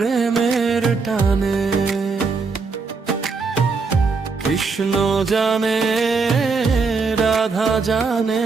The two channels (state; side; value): quieter; left; 4.6 dB